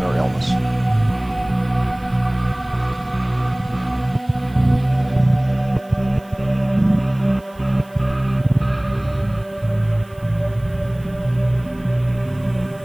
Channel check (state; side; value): noise; right; hiss, 30 dB below the sound